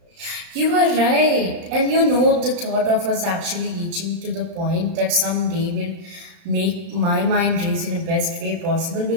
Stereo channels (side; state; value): left; late; 34 ms